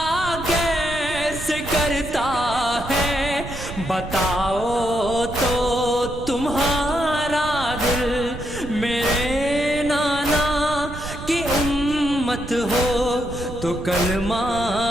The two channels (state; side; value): noise; right; rumble, 10 dB below the sound